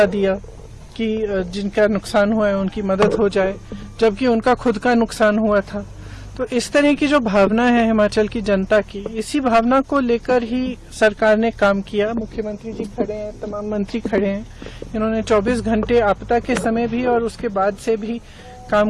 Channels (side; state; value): both; identical; correlation 1.00